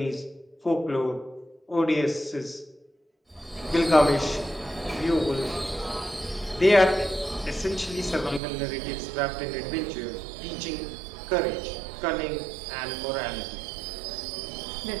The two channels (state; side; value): drops out; left; at 8.4 s